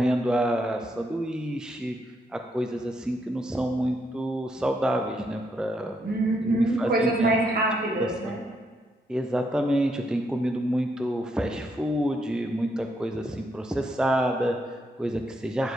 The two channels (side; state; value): both; normal; correlation 0.77